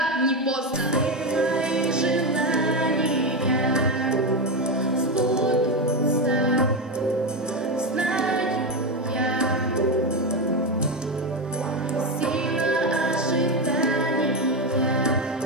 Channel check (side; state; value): both; normal; correlation 0.12